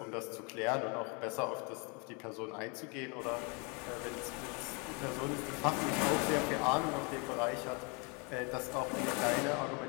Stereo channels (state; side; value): quieter; right; 32.5 dB